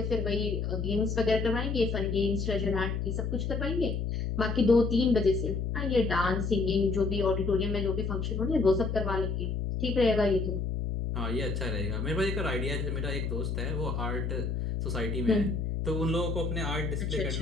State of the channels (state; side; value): noise; left; hum, 1 dB below the sound